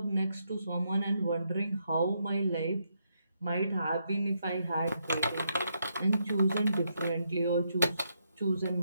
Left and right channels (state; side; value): inverted; both; correlation -0.79